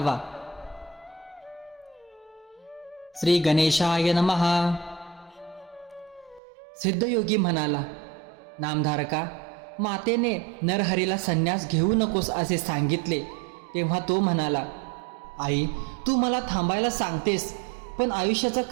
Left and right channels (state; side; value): drops out; left; at 6.4 s